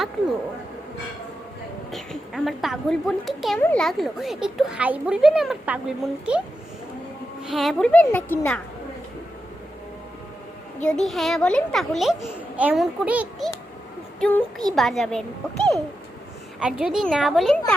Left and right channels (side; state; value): both; normal; correlation 0.88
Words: আমার পাগল বোনকে কেমন লাগলো? একটু হাই বলবেন আমার পাগল বোনকে। হ্যাঁ বলবেন নাকি না? যদি হ্যাঁ বলেন তাহলে এমন করে একটি টুঙ্কি বাজাবেন, ওকে? আর যদি না বলেন